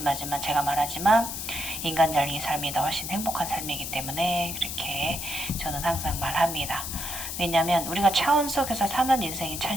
제가 말하지만 인간적인 삶이 더 훨씬 행복한 삶이기 때문에 그렇게 저는 항상 말합니다. 왜냐하면 우리가 차원 속에서 사는 인생이 참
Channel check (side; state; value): left; noise; hiss, 5 dB below the sound